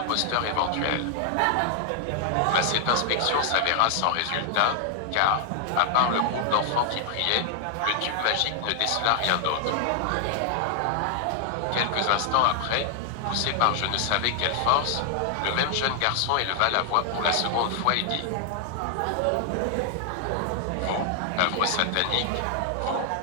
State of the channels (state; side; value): different; both; correlation 0.00